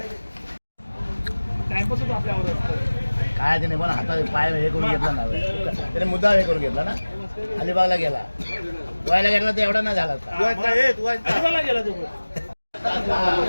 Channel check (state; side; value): inverted; both; correlation -1.00